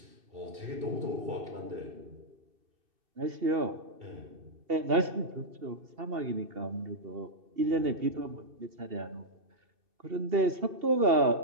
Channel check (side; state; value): left; late; 2.7 ms